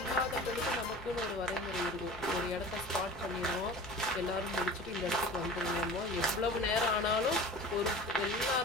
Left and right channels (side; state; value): left; noise; rumble, 20 dB below the sound